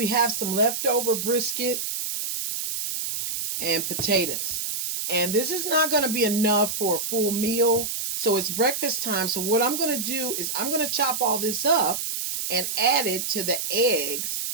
have some leftover brisket and potatoes. And this is not going to be enough for a full meal. So it's breakfast time. So what I'm going to do is I'm going to chop all this up and add it to the eggs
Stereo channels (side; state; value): right; noise; hiss, 3 dB below the sound